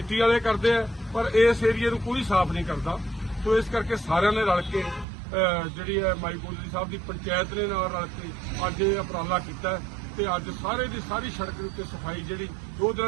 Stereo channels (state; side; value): drops out; left; at 5.1 s